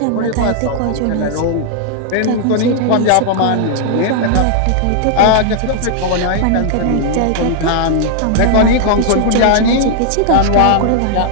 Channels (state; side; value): different; both; correlation -0.01